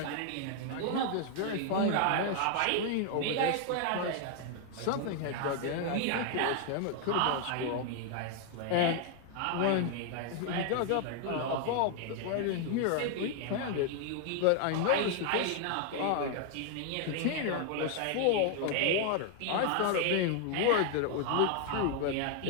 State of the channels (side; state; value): both; different; correlation 0.00